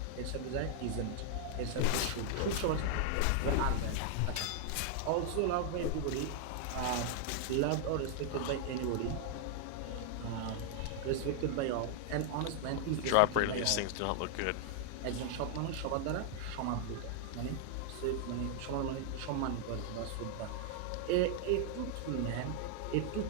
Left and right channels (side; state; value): both; different; correlation 0.00